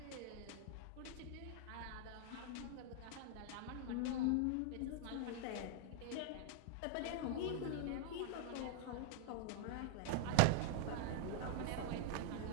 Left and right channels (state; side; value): different; both; correlation 0.00